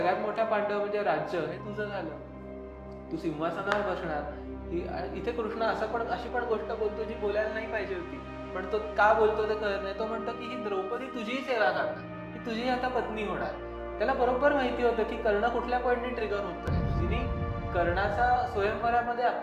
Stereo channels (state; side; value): identical; both; correlation 1.00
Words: मोठा पांडव म्हणजे राज्य हे तुझं झालं, तू सिंहासनावर बसणार. इथे कृष्ण अशी पण गोष्ट बोलतो जी बोलायला नाही पाहिजे होती, पण तो का बोलतो ते कळत नाही. तो म्हणतो की ही द्रौपदी तुझीही सेवा करणार, ही तुझी आता पत्नी होणार. त्याला बरोबर माहिती होतं की कर्ण कुठल्या पॉईंटने ट्रिगर होतोय. जिने कर्णाचा स्वयंवरामध्ये